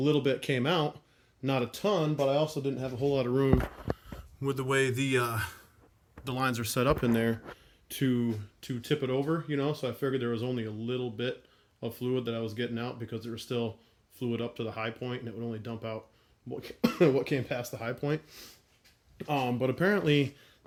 bit came out, not a ton, but I also didn't have a whole lot of room with the way the lines are set up in there to tip it over, you know. So I figured there was only a little bit of fluid that I was getting out because there was still fluid up to the high point, and it would only dump out what came past the high point. But apparently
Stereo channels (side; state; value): both; identical; correlation 1.00